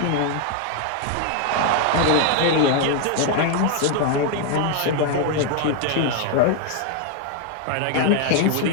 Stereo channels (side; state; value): both; different; correlation 0.00